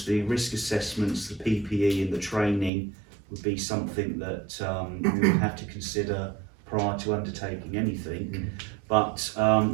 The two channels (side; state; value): left; drops out; at 2.7 s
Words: the risk assessments, the PPE and the training would be something that we would have to consider prior to undertaking anything. But